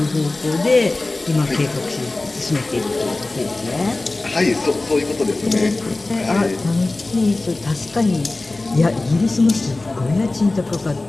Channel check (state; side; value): quieter; right; 3.0 dB